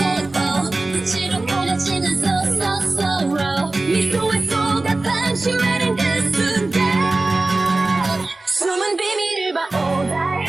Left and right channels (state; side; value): quieter; left; 3.1 dB